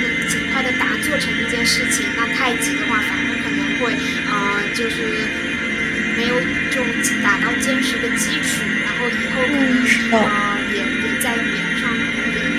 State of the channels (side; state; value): both; identical; correlation 1.00